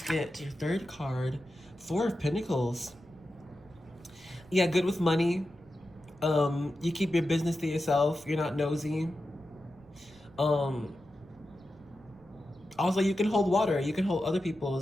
get your third card, Four of Pentacles. Yeah, good with money. You keep your business to yourself. You're not nosy. Also, you can hold water. You can hold other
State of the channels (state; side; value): noise; right; rumble, 25 dB below the sound